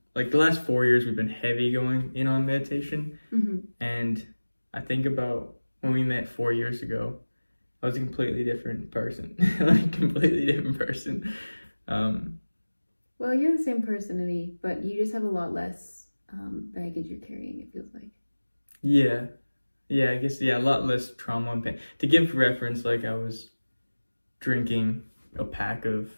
4 years, we've been heavy going in on meditation. And I think about when we met 4 years ago, I was a completely different person. Completely different person. Well, you're the same person to me, but you just have a lot less baggage you're carrying, it feels like. Yeah, I guess, a lot less trauma and pain. To give reference, like I was drinking a pack of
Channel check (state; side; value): inverted; both; correlation -1.00